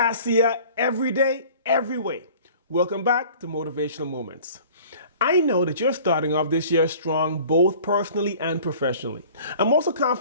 every day, every way. Welcome back to Motivational Moments. I know that you're starting off this year strong, both personally and professionally. I'm also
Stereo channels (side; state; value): both; inverted; correlation -0.47